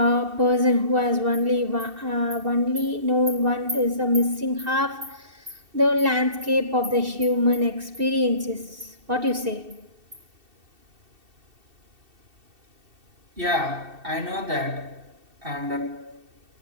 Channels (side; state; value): left; late; 2.7 ms